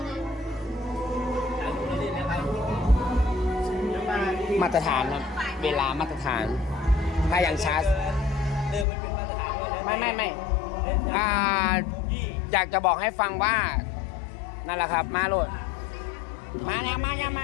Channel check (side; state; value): right; drops out; at 8.8 s